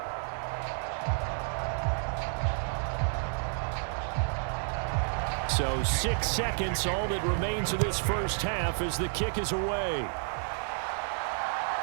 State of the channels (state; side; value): silent; left; 57 dB below the other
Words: So 6 seconds, all that remains of this first half as the kick is away.